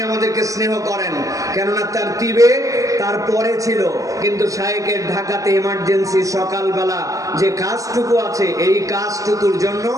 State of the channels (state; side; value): late; left; 0.16 ms